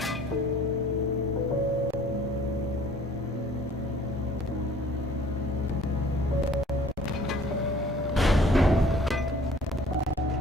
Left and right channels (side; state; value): both; normal; correlation 0.53